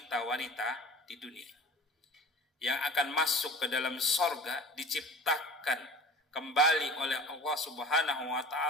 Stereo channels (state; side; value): normal; both; correlation 0.40